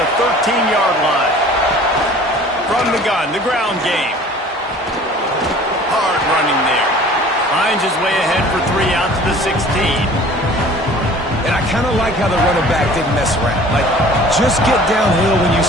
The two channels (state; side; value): normal; both; correlation 0.47